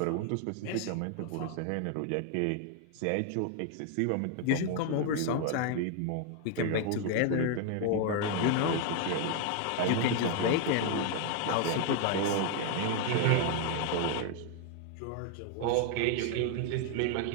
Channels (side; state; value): both; different; correlation 0.00